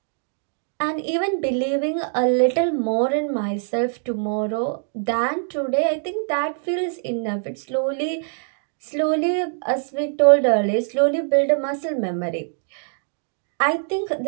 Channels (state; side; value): silent; left; digital silence